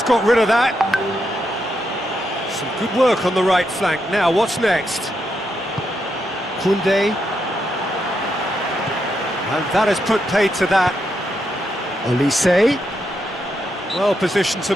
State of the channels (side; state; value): both; normal; correlation 0.82